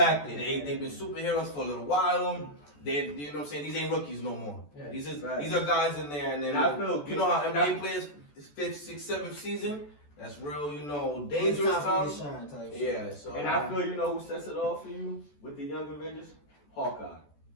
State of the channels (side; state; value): right; late; 14 ms